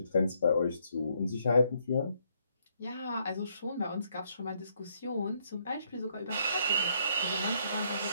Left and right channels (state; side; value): inverted; both; correlation -0.72